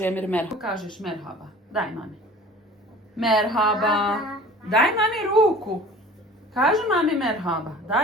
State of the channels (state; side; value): normal; both; correlation 0.44